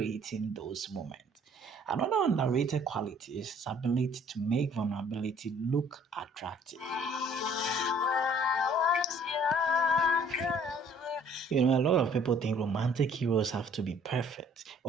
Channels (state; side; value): normal; both; correlation 0.57